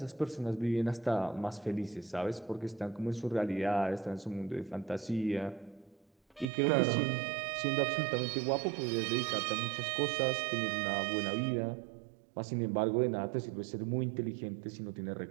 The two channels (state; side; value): drops out; left; at 6.5 s